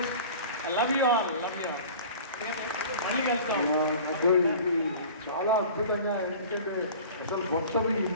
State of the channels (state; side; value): inverted; both; correlation -0.41